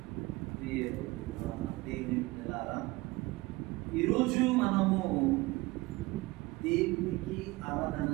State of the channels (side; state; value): left; quieter; 21.5 dB